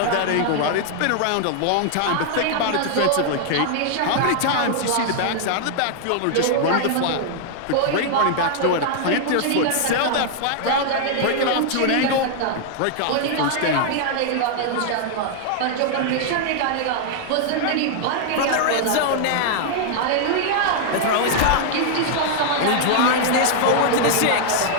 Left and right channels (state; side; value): different; both; correlation 0.00